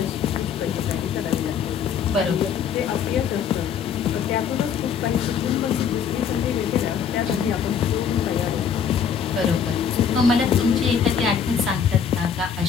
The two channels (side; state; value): right; quieter; 7.2 dB